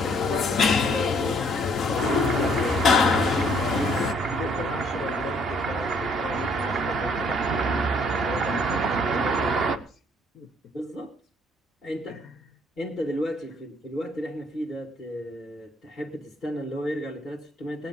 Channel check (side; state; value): both; normal; correlation 0.64